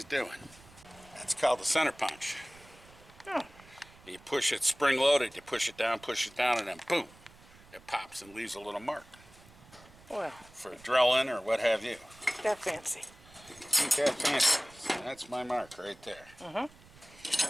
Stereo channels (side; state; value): right; noise; rumble, 24 dB below the sound